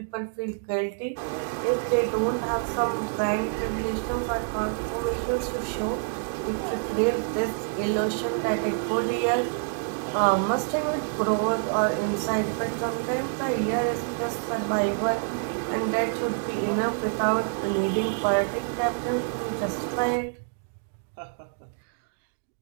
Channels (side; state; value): left; silent; digital silence